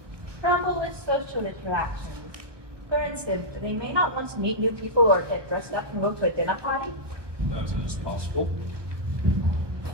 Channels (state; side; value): late; left; 1.0 ms